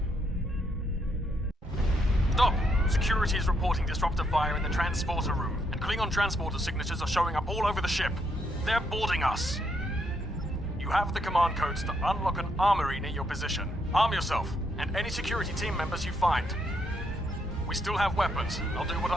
Stop! Security is reporting disruptor fire in the transporter room, and Klingon transporter signatures are showing up all over the ship. They're boarding us. You have the command codes to unlock an armory near your position. Arm yourself, and any security team members you find. We still have weapons. I'll do what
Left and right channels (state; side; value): normal; both; correlation 0.76